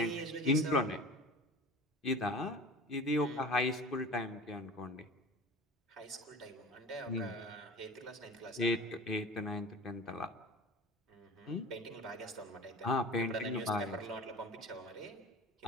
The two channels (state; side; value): normal; both; correlation 0.38